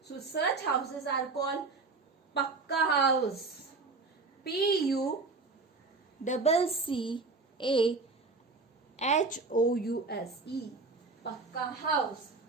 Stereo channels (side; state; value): left; quieter; 3.9 dB